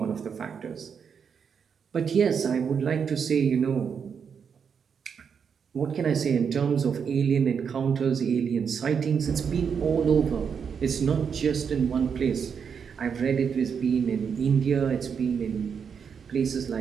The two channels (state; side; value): quieter; left; 6.8 dB